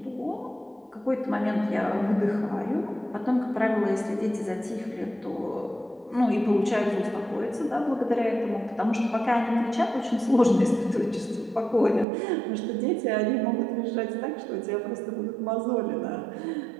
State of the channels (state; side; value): drops out; left; at 12.1 s